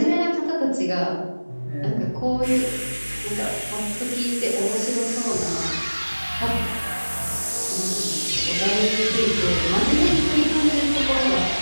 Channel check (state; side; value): inverted; both; correlation -1.00